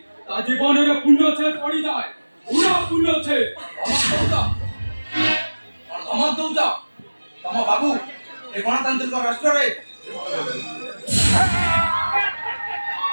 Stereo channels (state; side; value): inverted; both; correlation -1.00